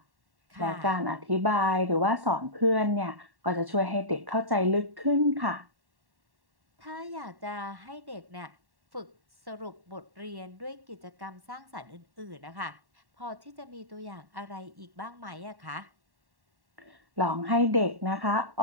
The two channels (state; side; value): late; left; 1.1 ms